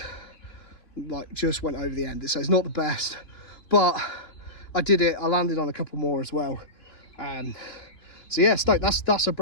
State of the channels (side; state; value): right; late; 2.9 ms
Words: just went over the end. So it's not the best, but I did it. I landed on a couple more as well. So yeah, stoked. That's a